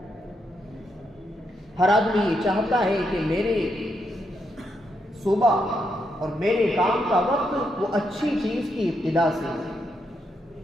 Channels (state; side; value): normal; both; correlation 0.80